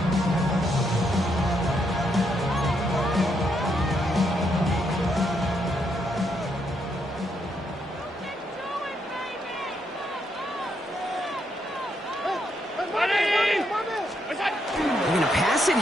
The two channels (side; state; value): both; normal; correlation 0.77